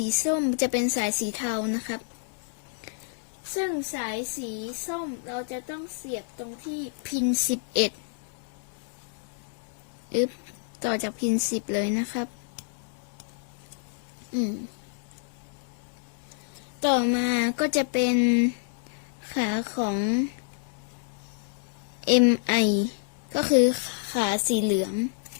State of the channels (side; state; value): right; silent; digital silence